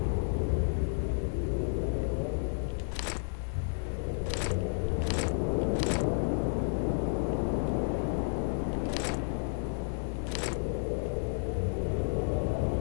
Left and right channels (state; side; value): silent; right; digital silence